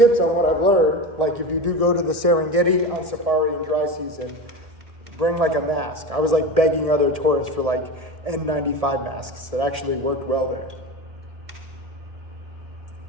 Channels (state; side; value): late; left; 1.7 ms